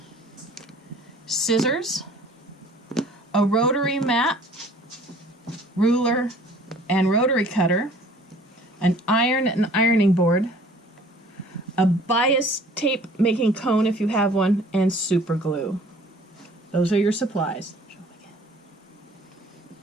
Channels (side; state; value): both; normal; correlation 0.52